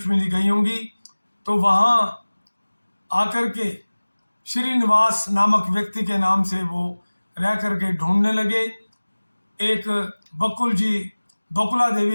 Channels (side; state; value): both; inverted; correlation -1.00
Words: जी गई होंगी, तो वहां आकर के श्रीनिवास नामक व्यक्ति के नाम से वो रह करके ढूंढने लगे। एक बकुला